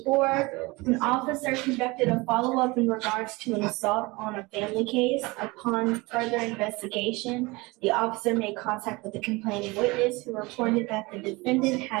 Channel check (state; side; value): quieter; left; 23.8 dB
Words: an officer conducted a follow-up in regards to an assault on a family case. Upon further investigation, the officer made contact with the complaining witness who reported that the defendant